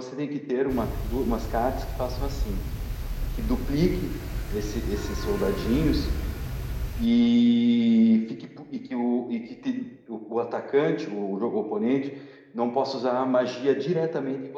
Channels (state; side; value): identical; both; correlation 1.00